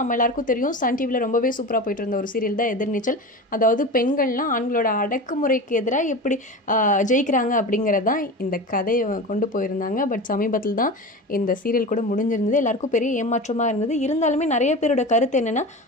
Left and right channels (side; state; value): both; normal; correlation 0.29